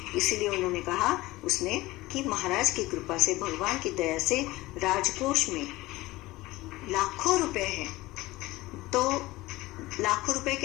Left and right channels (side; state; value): right; quieter; 19.2 dB